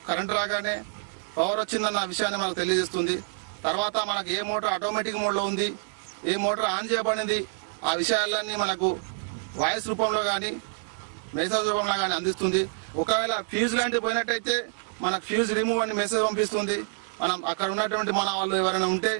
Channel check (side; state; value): left; silent; 60 dB below the other